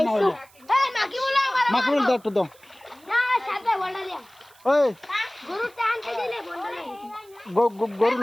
হইলো এই মাকি বলা মাকে বল দাও একটু দাও না সাথে বলডা লিয়া ওই গরু টানতে দিলে বলডা লিয়া গরু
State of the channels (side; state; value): right; noise; hiss, 27 dB below the sound